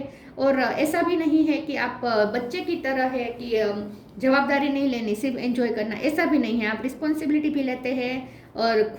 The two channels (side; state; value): both; identical; correlation 1.00